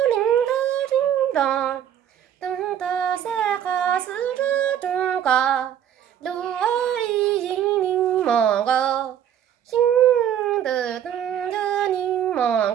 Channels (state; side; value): quieter; left; 9.9 dB